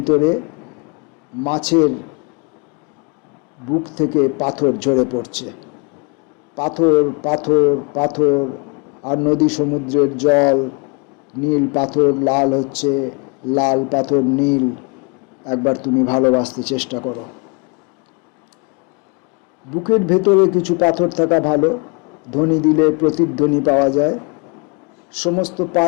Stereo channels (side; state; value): right; quieter; 33.1 dB